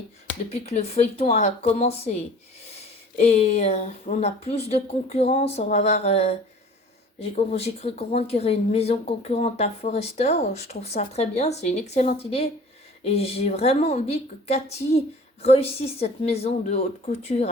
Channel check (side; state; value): both; normal; correlation 0.46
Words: depuis que le feuilleton a commencé. Et on a plus de concurrence, on va avoir... j'ai cru comprendre qu'il y aurait une maison concurrente à Forrester. Je trouve ça très bien, c'est une excellente idée. Et j'ai vraiment envie que Cathy réussisse cette maison de haute couture